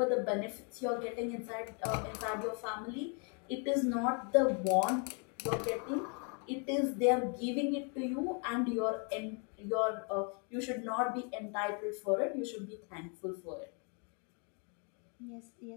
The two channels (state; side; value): quieter; right; 38.0 dB